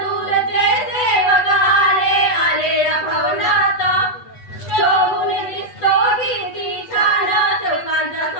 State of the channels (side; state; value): right; late; 8.2 ms